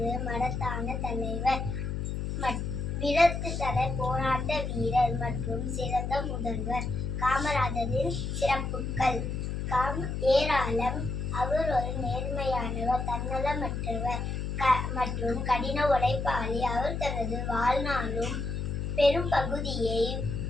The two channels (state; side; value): noise; left; hum, 3 dB below the sound